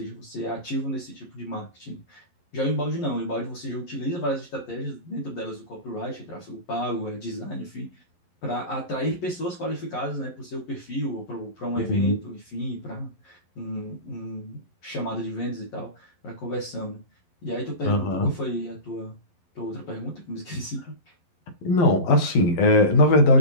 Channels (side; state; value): right; late; 11 ms